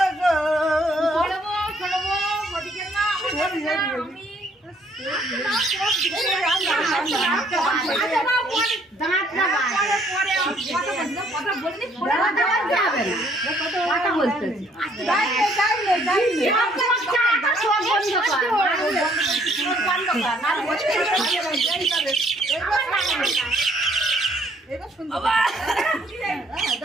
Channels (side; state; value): both; normal; correlation 0.64